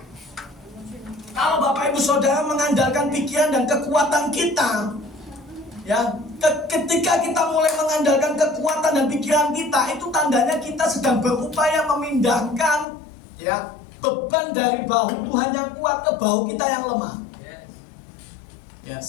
Kalau Bapak Ibu Saudara mengandalkan pikiran dan kekuatan kita, Ya, ketika kita mulai mengandalkan kekuatan dan pikiran kita, itu tandanya kita sedang berupaya memindahkan ya beban dari bahu Tuhan yang kuat ke bahu kita yang lemah. Ya,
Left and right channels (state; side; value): drops out; right; at 12.9 s